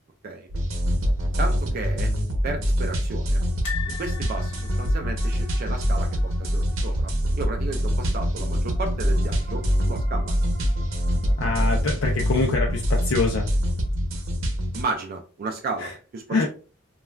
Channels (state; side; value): normal; both; correlation 0.78